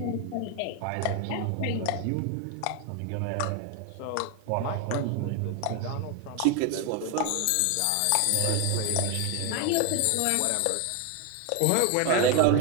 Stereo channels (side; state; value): both; different; correlation 0.01